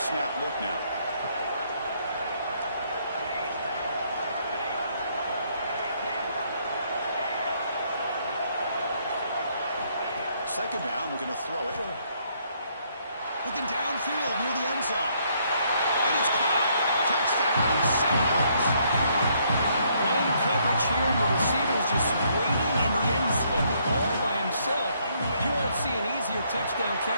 look now. Second down, we're going to throw it. Looking downfield near the end zone. And it's caught. Touchdown, Seminoles. Long coverage here, and the receiver is just waiting in the end zone all by himself. You won't see an easier touchdown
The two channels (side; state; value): both; inverted; correlation -0.70